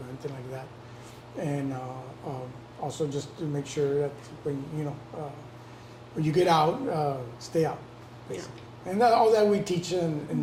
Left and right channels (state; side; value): identical; both; correlation 1.00